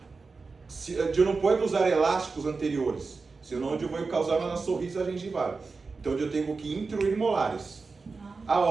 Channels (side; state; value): left; quieter; 4.3 dB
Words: eu não posso usar elásticos anteriores, senão eu vou causar uma sorriso gengival. Então eu tenho que intruir molares.